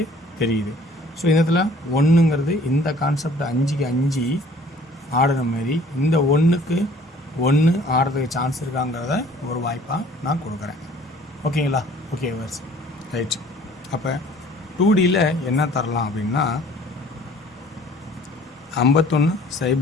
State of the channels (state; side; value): normal; both; correlation 0.54